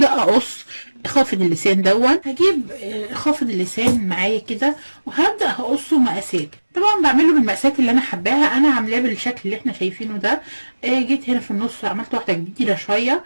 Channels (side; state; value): both; inverted; correlation -1.00